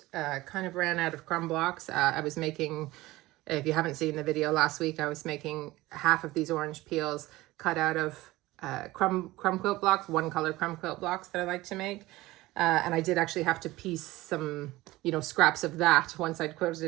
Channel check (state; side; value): quieter; left; 18.6 dB